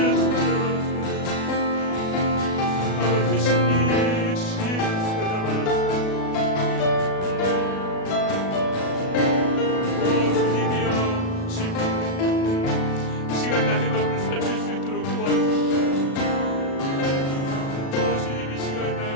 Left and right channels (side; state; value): right; late; 37 ms